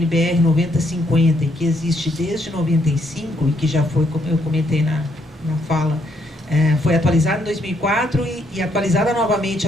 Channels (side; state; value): both; normal; correlation 0.73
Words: 9050, e que existe desde 95, e que já foi, como eu comentei na fala, foi atualizada em 2004 e atualizada novamente